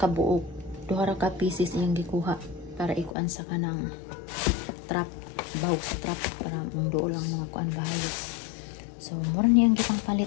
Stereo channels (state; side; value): drops out; right; at 3.2 s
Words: buok, duha ra ka pieces iyang gikuha para ikuan sa kanang trap, bahog sa trap para mangduol lang mga kuan bahayos. So, mura niyang gipang